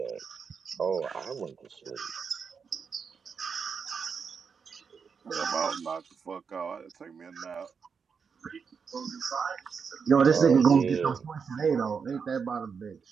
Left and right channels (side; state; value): left; quieter; 6.0 dB